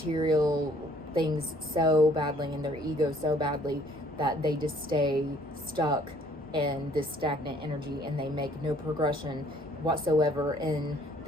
things so badly, and their ego so badly, that they just stay stuck in this stagnant energy, and they make no progression whatsoever in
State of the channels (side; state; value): both; normal; correlation 0.60